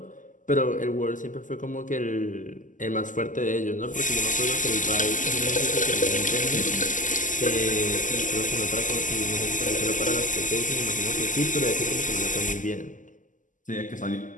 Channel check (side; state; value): right; late; 0.37 ms